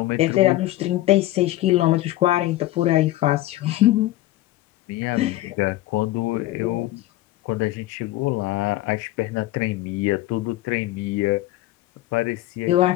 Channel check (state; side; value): quieter; right; 16.5 dB